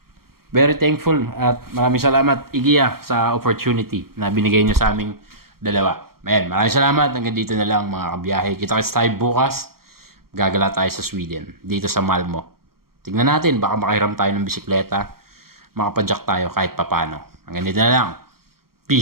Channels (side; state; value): left; late; 0.94 ms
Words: Very thankful at maraming salamat IKEA sa opportunity na binigay nyo sa aming dalawa. Ayan, maraming salamat. Hanggang dito na lang mga kabiyahe. Kita-kits tayo bukas. Gagala tayo sa Sweden. Dito sa Malmo. Tignan natin. Baka makahiram tayo ng bisikleta. Makapadyak tayo kahit papano. Hanggang dito na lang.